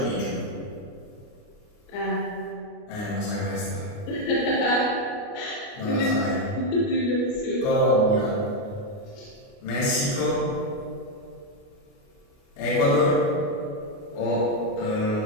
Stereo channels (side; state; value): right; late; 29 ms